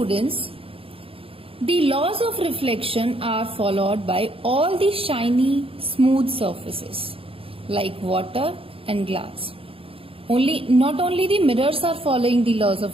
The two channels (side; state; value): left; late; 0.27 ms